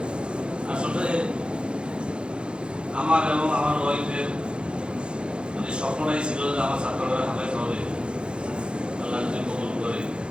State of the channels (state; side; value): late; left; 0.054 ms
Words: আসলে আমার এবং আমার ওয়াইফের মানে স্বপ্নটাই ছিল যে আমার ছাত্ররা হাফেজ হবে, আল্লাহ যদি কবুল করে।